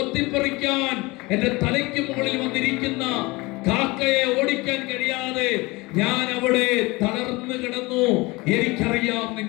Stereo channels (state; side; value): quieter; right; 23.3 dB